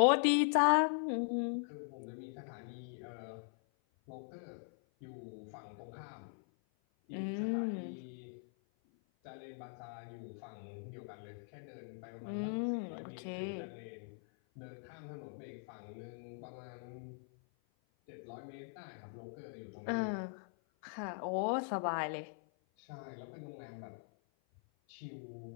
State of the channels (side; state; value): right; silent; 51 dB below the other